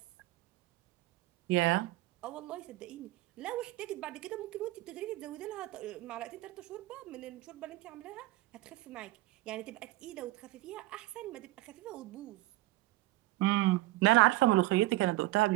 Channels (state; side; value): quieter; left; 18.6 dB